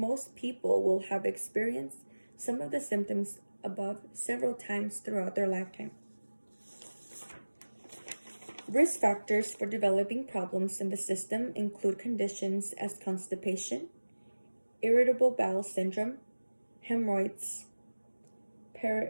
people will have experienced some of the symptoms above several times throughout their lifetime. Risk factors for developing problems in the system include conditions as constipation, irritable bowel syndrome, hemorrhoids,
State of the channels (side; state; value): both; inverted; correlation -1.00